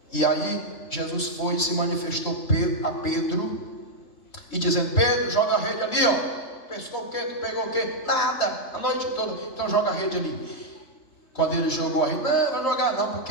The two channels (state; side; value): late; right; 3.2 ms